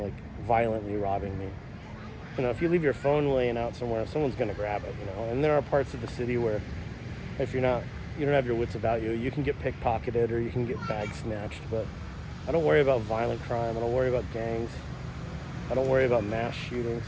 like violently robbing me. You know, if you leave your phone laying out somewhere, someone's gonna grab it, you know. And there are parts of the city where if you don't have your wits about you, you can get pickpocketed or you can get bag snatched, but I don't worry about violent crime, I don't worry about gangs, I don't worry about mass shootings.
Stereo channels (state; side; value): identical; both; correlation 1.00